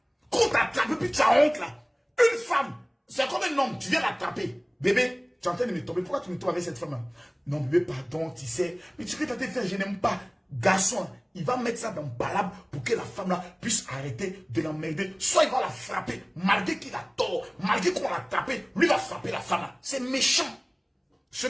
Quand tu attrapes, puis tu as honte là. Une femme, c'est comme un homme, tu viens l'attraper. Bébé, tu es en train de me tomber. Pourquoi tu me tombes avec cette femme-là? Non, bébé, pardon, tu sais. Mais tu peux t'en faire, je n'aime pas. Garçon, il va mettre ça dans palabre pour que la femme-là puisse arrêter de l'emmerder. Soit il va la frapper, malgré qu'il a tort, malgré qu'on l'a tapé, lui va frapper la femme-là. C'est méchant. Ce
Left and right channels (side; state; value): both; identical; correlation 1.00